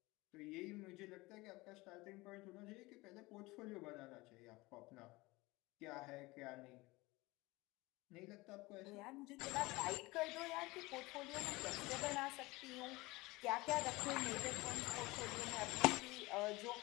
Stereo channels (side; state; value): right; quieter; 21.9 dB